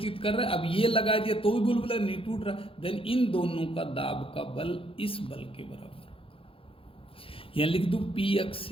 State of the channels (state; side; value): late; right; 0.27 ms